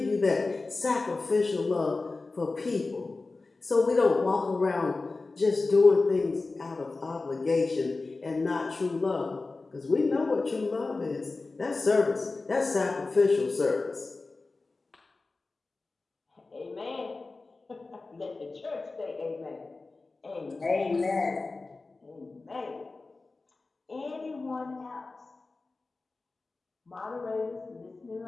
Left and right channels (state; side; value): quieter; right; 3.6 dB